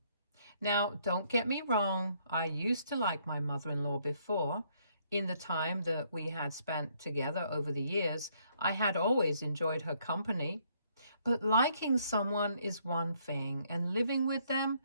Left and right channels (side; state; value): both; inverted; correlation -0.69